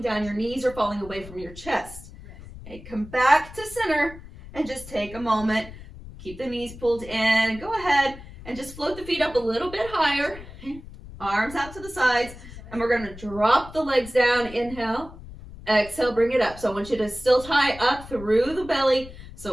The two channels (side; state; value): left; noise; rumble, 16 dB below the sound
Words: down, your knees are falling away from your chest. Okay, come back to center and just take a moment. Keep the knees pulled in. Go ahead and just float the feet up a little bit higher. Arms out to the sides. And we're going to drop the legs down. Inhale. Exhale, bring it up. So I want you to still tie up through the belly.